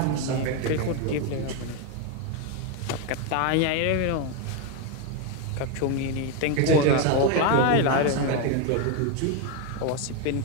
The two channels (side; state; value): both; different; correlation 0.02